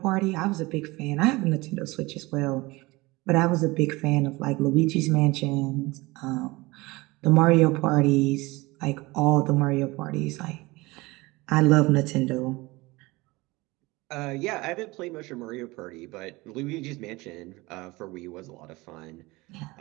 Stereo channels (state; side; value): quieter; left; 22.2 dB